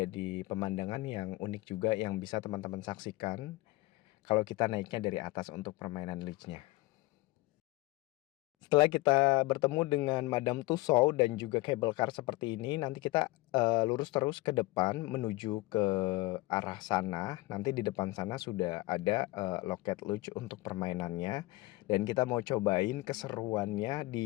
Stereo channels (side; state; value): right; quieter; 21.0 dB